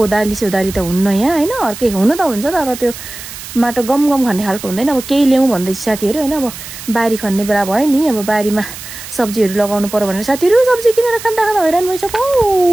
सोदाली त हुन्न यहाँ, हैन। अर्कै हुन त हुन्छ तर त्यो माटो गम खन्ने खालको हुँदैन। अब केही ल्याउँ भन्दैछ साथीहरु, हैन। अब बारी खन्ने बेला भयो नि, अब बारीमा सब्जीहरु लगाउनु पर्यो भनेर साथीहरु सब्जी किनेर खाँदा हैरान भइसक्यो।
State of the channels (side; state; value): right; noise; hiss, 12 dB below the sound